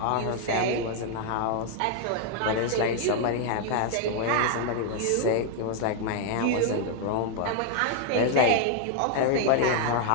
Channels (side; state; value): both; different; correlation 0.00